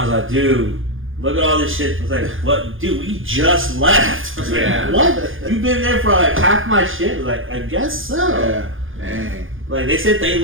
was like, dude, look at all this shit. I was like, what? Dude, we just left. I was like, what? You've been there for like half my shit? I was like, I guess so. Yeah. Dang. Like, they said they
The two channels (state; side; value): late; left; 0.58 ms